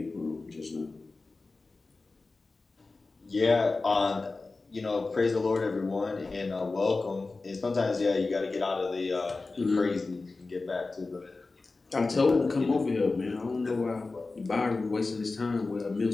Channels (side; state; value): right; quieter; 3.6 dB